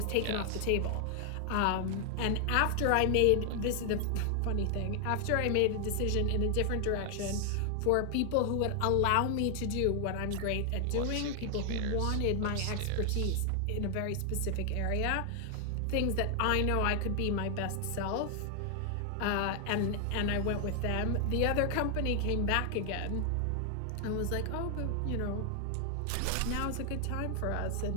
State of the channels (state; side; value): different; both; correlation 0.00